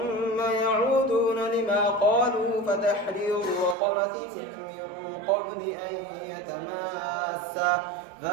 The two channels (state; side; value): drops out; left; at 3.8 s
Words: يعودون لما قالوا فتحرير رقبة من قبل أن يتماسا